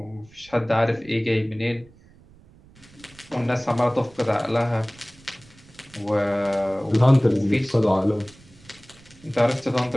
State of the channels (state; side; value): noise; right; rumble, 25 dB below the sound